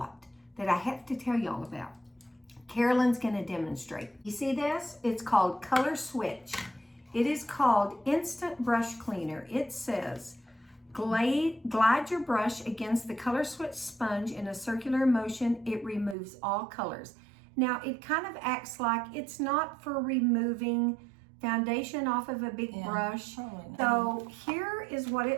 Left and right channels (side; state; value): left; drops out; at 16.2 s